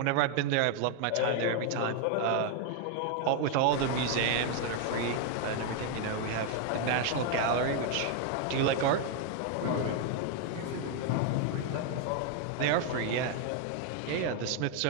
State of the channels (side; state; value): both; different; correlation 0.01